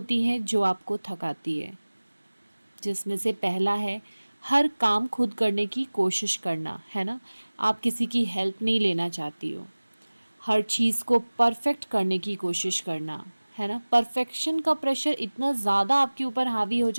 हैं जो आपको थकाती है, जिसमें से पहला है हर काम खुद करने की कोशिश करना, है ना। आप किसी की हेल्प नहीं लेना चाहती हो। हर चीज़ को परफेक्ट करने की कोशिश करना, है ना। परफेक्शन का प्रेशर इतना ज़्यादा आपके ऊपर हावी हो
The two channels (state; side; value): inverted; both; correlation -1.00